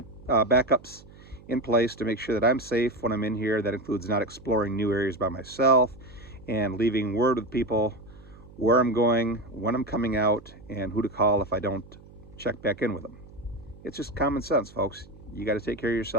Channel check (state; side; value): noise; right; hum, 21 dB below the sound